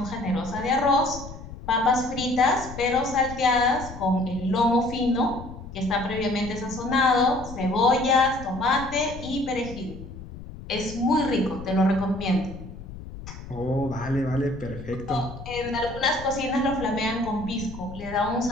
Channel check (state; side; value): noise; left; rumble, 13 dB below the sound